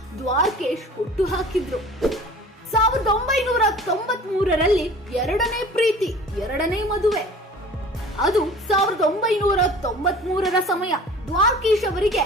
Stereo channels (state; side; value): normal; both; correlation 0.44